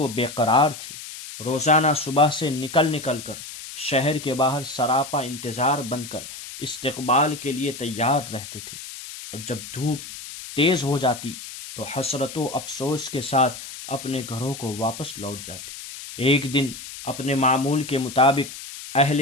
بے قرار تھے۔ روزانہ صبح سے نکل کر شہر کے باہر سراپا انتظار بن کر استقبال کے لیے تیار رہتے تھے، اور جب دھوپ تیز ہو جاتی تو حسرت و افسوس کے ساتھ اپنے گھروں کو واپس لوٹ جاتے۔ ایک دن اپنے معمول کے مطابق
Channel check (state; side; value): noise; left; hiss, 12 dB below the sound